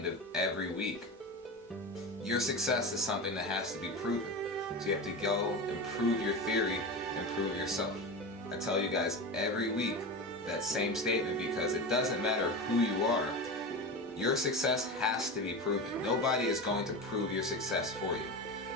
of every week, your success is something that has to be proven. So you have to go and prove your theory and prove yourself. I tell you guys every week that same statement, because it doesn't matter who you are, your success has to be proven. Nobody is going to prove your success for you.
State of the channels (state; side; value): normal; both; correlation 0.25